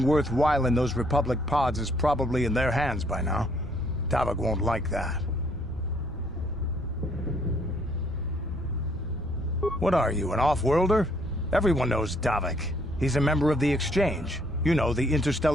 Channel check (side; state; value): both; normal; correlation 0.66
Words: worthwhile in those Republic pods is probably in their hands by now. Davik won't like that. What are you, an off-worlder? Everyone knows Davik. He's a member of the Exchange. You know, the